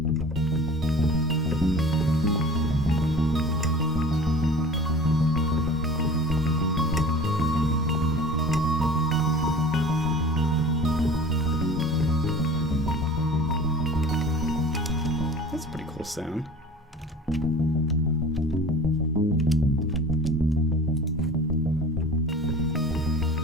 That's a pretty cool sound.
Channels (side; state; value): both; normal; correlation 0.41